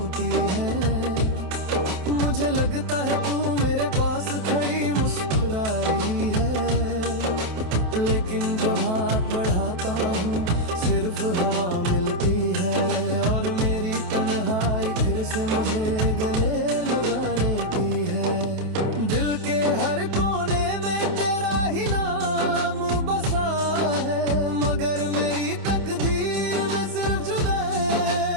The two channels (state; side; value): late; left; 28 ms